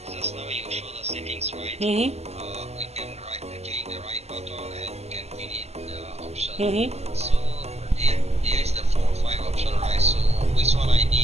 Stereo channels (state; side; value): late; left; 0.31 ms